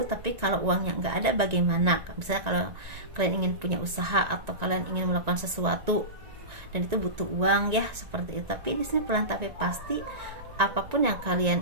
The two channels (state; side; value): late; left; 1.9 ms